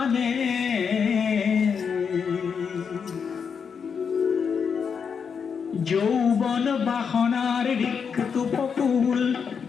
যৌবন বাসনার রিক্ত পকুল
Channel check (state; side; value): quieter; right; 6.4 dB